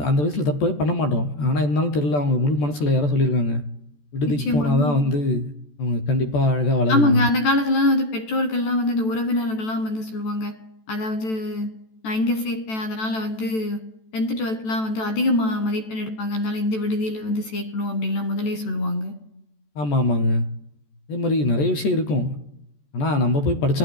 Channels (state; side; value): late; right; 14 ms